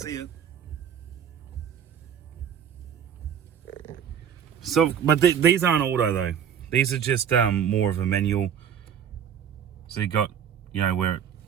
it. So, but these aren't auto though. These are just more of a manual. So you got, you know, where it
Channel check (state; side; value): quieter; left; 8.5 dB